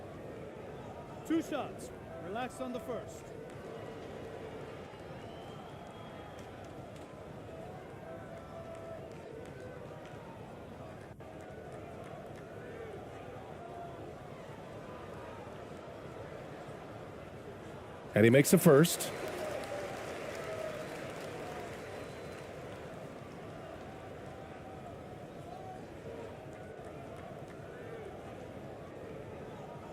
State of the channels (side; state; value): both; identical; correlation 1.00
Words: Two shots. Relax on the first. And he makes a first.